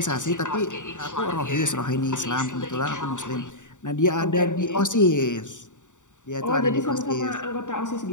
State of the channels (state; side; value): late; right; 0.86 ms